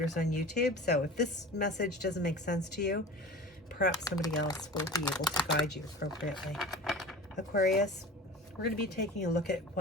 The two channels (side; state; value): both; normal; correlation 0.36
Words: on YouTube. So if this message doesn't make sense to you, perhaps somebody else will be able to guide you appropriately. Aquarius, we're going to be taking a look at